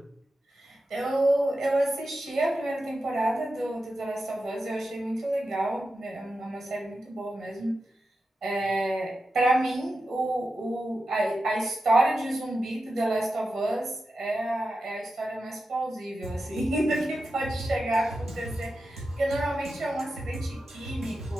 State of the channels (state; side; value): normal; both; correlation 0.90